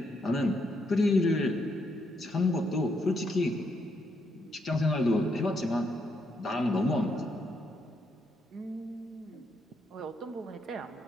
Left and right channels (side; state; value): both; normal; correlation 0.77